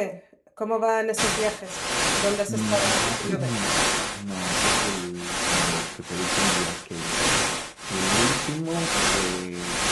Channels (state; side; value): identical; both; correlation 1.00